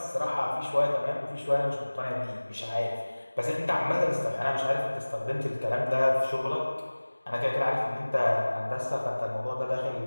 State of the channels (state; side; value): inverted; both; correlation -1.00